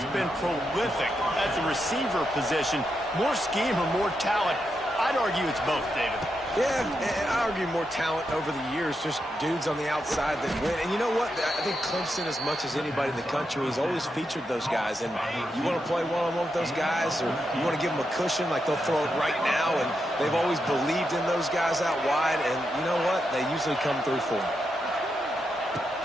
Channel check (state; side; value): normal; both; correlation 0.85